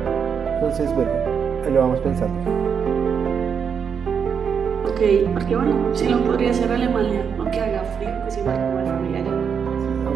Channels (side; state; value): left; quieter; 6.9 dB